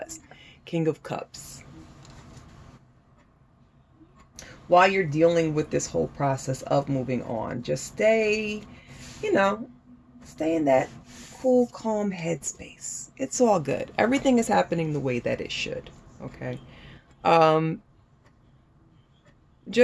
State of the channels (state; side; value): identical; both; correlation 1.00